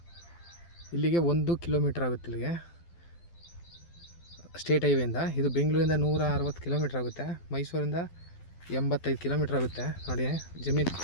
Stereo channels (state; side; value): late; right; 12 ms